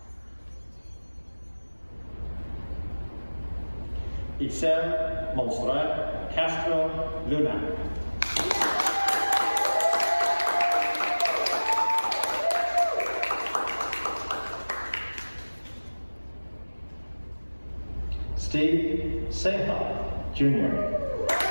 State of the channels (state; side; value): inverted; both; correlation -1.00